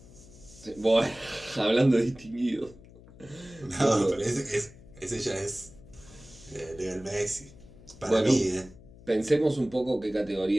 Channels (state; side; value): noise; left; hum, 21 dB below the sound